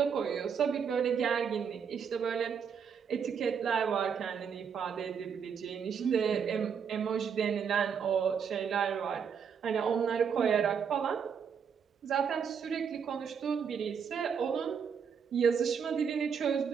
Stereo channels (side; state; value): left; quieter; 6.9 dB